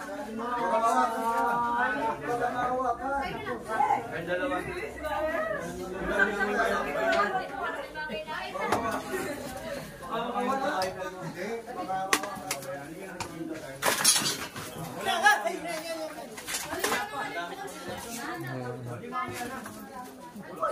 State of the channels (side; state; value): both; identical; correlation 1.00